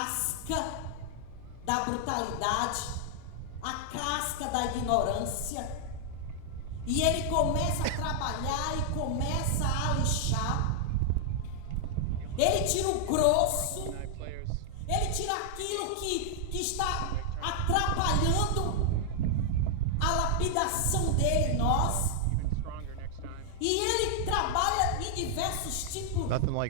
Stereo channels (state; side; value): different; both; correlation -0.01